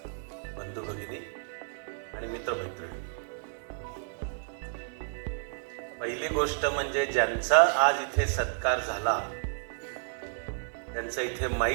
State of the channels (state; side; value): silent; left; 57 dB below the other